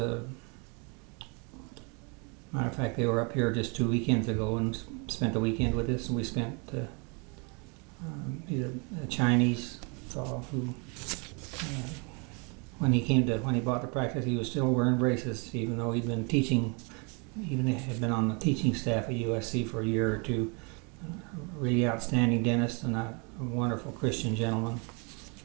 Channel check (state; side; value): quieter; left; 33.3 dB